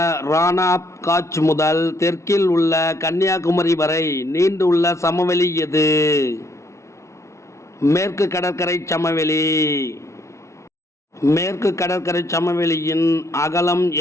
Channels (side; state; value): right; late; 0.14 ms